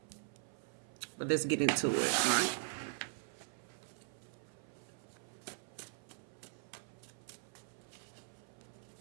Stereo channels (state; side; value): silent; left; 50 dB below the other